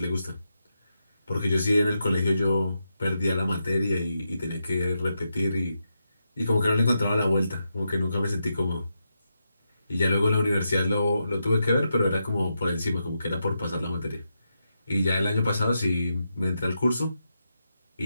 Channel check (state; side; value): inverted; both; correlation -0.85